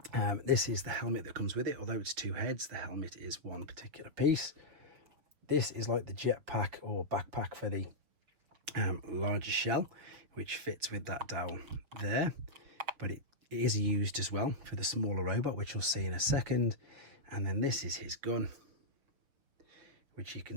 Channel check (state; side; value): late; left; 6.7 ms